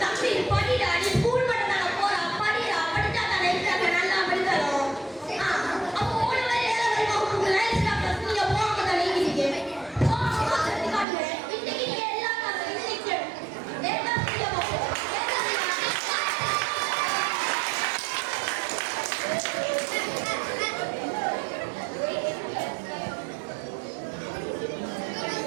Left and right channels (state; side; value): drops out; left; at 11.1 s